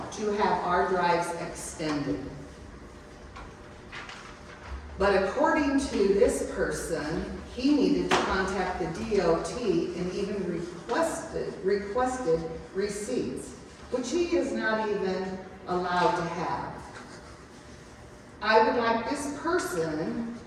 to have our drives extended. But according to this person, he needed to contact the DOT and even requested receipts, which he is not even allowed to have. I would like this person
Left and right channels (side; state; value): both; identical; correlation 1.00